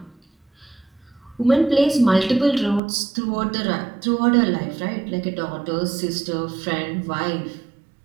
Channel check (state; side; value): drops out; left; at 2.8 s